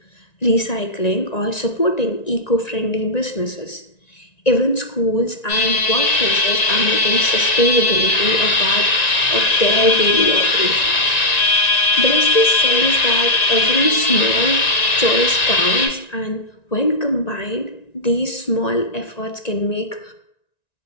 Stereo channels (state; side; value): late; right; 1.9 ms